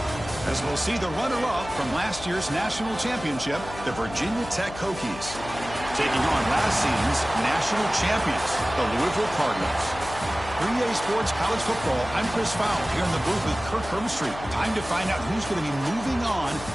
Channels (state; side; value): noise; left; hum, 13 dB below the sound